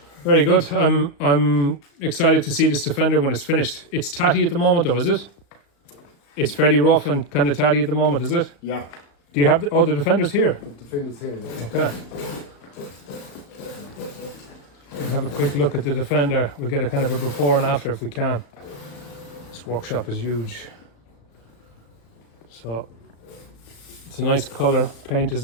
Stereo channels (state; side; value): late; right; 35 ms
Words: Very good. I'm excited to see this Defender when it's finished. It's tatty at the moment, though, is it? It's fairly rough and kind of tatty at the moment, is it? Yeah. Do you have the Defender's here? The Defender's here. Yeah. Okay. We'll have a quick look at the Defender. We'll get a kind of a before and after if we can. This workshop is huge. So it's a nice colour. Paint is